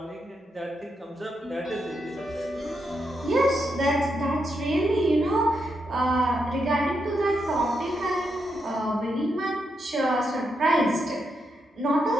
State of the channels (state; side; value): normal; both; correlation 0.82